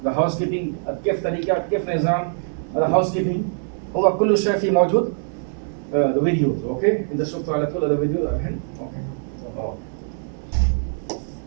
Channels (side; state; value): left; silent; 64 dB below the other